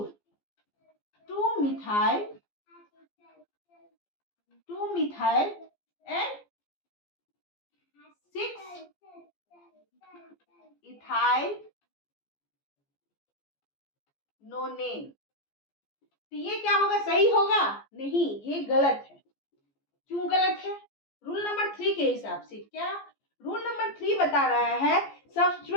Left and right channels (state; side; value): late; right; 14 ms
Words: 2 मिथाइल एंड 6 इथाइल नोनेन, तो ये क्या होगा, सही होगा नहीं, ये गलत है। क्यों गलत है, रूल नंबर 3 के हिसाब से। क्या रूल नंबर 3 बता रहा है,